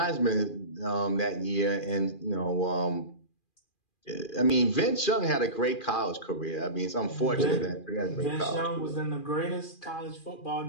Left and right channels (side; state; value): right; late; 2.4 ms